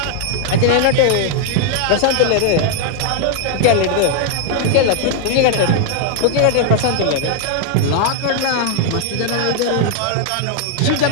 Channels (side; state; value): both; different; correlation 0.00